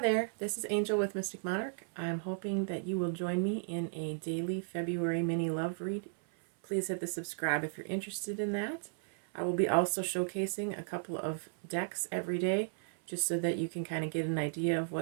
this is Angel with Mystic Monarch. I'm hoping that you will join me in a daily February mini love read. Please hit the subscribe if you're interested in that. I will be also showcasing a couple of decks every day just so that you can kind of get an idea of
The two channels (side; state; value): left; silent; 55 dB below the other